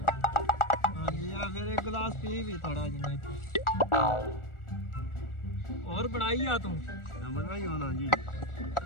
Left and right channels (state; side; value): late; right; 1.4 ms